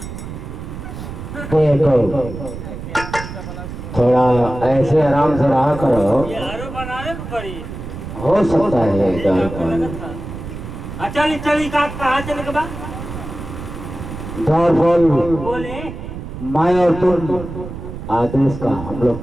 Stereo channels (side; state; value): right; noise; rumble, 9 dB below the sound